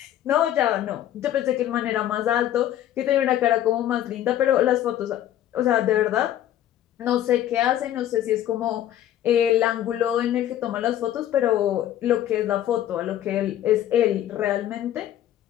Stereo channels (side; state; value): right; quieter; 11.9 dB